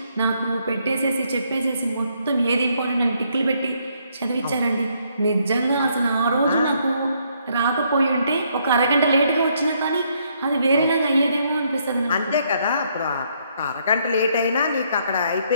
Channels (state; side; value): inverted; both; correlation -0.71